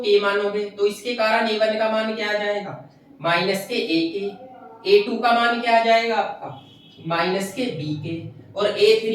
मानोगे तो इसके कारण A1 का मान क्या आ जाएगा, माइनस के a के, A2 का मान क्या आ जाएगा आपका, माइनस के b के, और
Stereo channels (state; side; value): identical; both; correlation 1.00